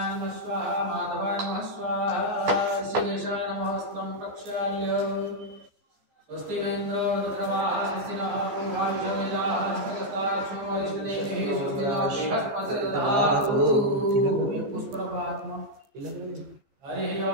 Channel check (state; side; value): late; left; 15 ms